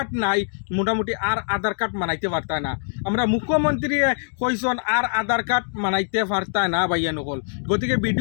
নাই মোটামুটি আর আধার কার্ড মানাইতে পারতা না আমরা মুখ্যমন্ত্রী কইসন আর আধার কার্ড মানাইতে পারতা না ভাইয়া নকল গতিকে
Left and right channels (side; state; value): right; silent; digital silence